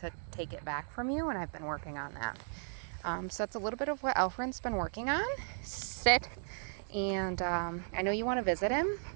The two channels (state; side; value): silent; left; digital silence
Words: take it back from you, and I've been working on that. So that's a little bit of what Alfred's been working on. Sit. And I know you want to visit him.